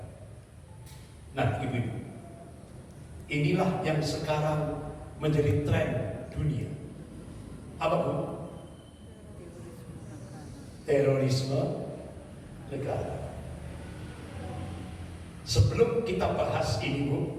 Nah, ibu-ibu, inilah yang sekarang menjadi tren dunia. Apa Bu? Terorisme negara. Sebelum kita bahas ini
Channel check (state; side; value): identical; both; correlation 1.00